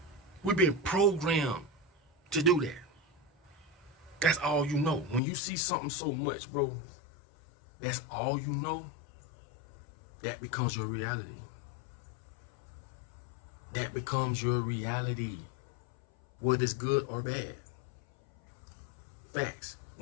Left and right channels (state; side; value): drops out; right; at 5.2 s